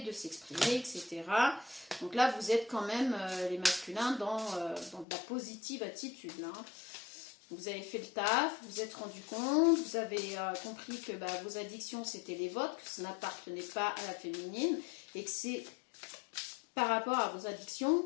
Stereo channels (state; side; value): drops out; right; at 5.1 s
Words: de s'exprimer, etc. Donc là, vous êtes quand même, les masculins, dans de la positive attitude. Là. Vous avez fait le taf, vous vous êtes rendu compte, vous avez compris que vos addictions, c'était les vôtres, que ça n'appartenait pas à la féminine, et que c'est par rapport à vos addictions